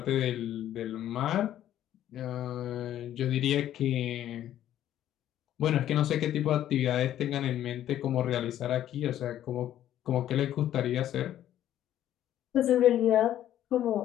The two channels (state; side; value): quieter; right; 11.9 dB